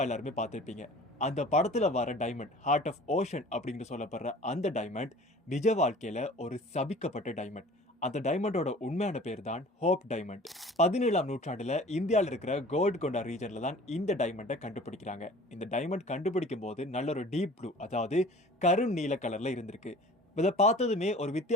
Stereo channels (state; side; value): normal; both; correlation 0.45